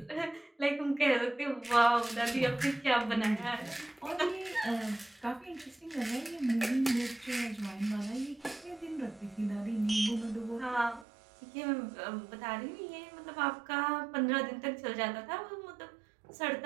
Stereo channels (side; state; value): left; drops out; at 11.1 s